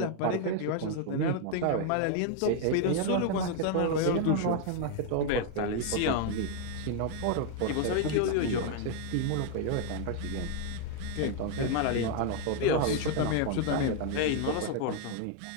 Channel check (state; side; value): different; both; correlation 0.00